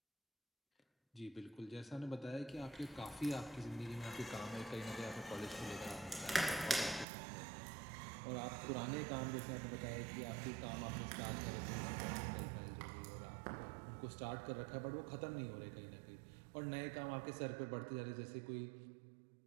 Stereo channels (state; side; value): drops out; left; at 7.1 s